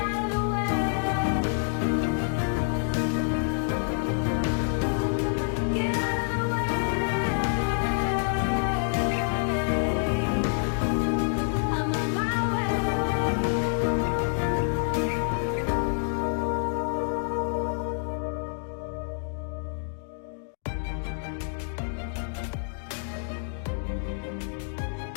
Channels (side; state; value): right; silent; 60 dB below the other